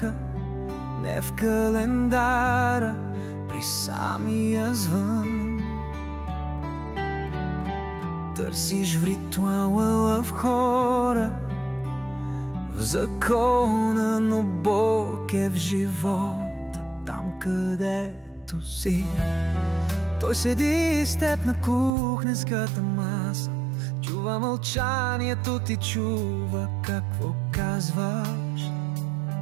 не в календара, при самия звън. Търсиш в ритуала, в хора, в закона, но Бог е в живота, там където си. Той седи с теб на кухненската маса, чува мълчанието ти, чува какво казваш.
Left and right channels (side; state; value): left; drops out; at 21.9 s